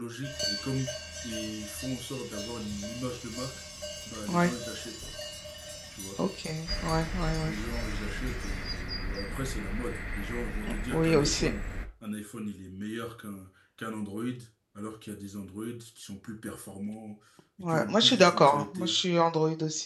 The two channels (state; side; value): identical; both; correlation 1.00